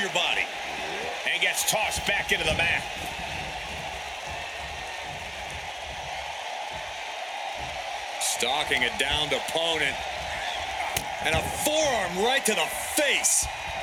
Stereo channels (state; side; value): identical; both; correlation 1.00